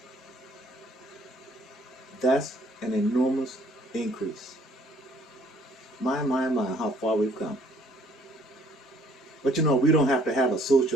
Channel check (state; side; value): normal; both; correlation 0.61